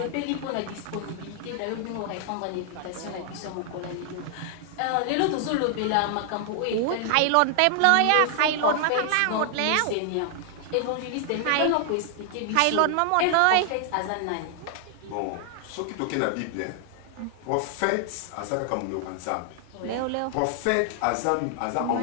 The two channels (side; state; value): both; different; correlation 0.00